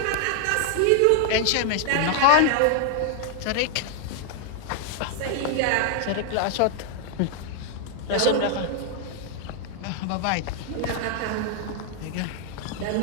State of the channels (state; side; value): different; both; correlation 0.00